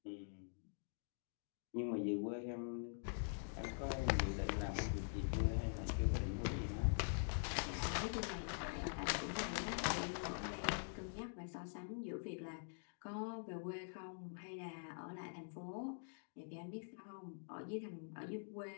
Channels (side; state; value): right; silent; digital silence